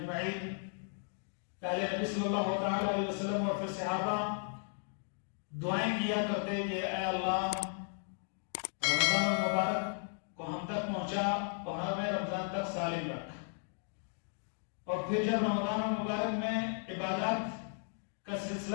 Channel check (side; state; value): right; silent; 54 dB below the other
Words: پہلے نبی صلی اللہ تعالی علیہ وسلم اور پھر صحابہ دعائیں کیا کرتے کہ اے اللہ رمضان المبارک کو ہم تک پہنچا اور ہمیں رمضان تک سالم رکھ۔ اور پھر جب رمضان المبارک میں عبادات کا